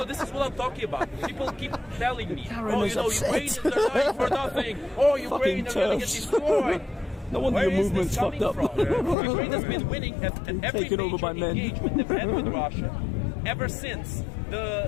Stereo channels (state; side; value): drops out; right; at 9.2 s